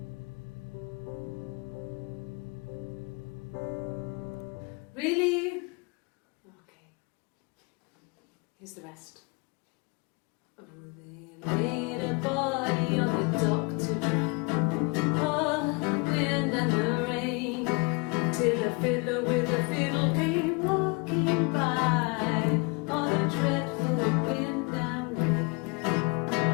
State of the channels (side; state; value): right; quieter; 30.5 dB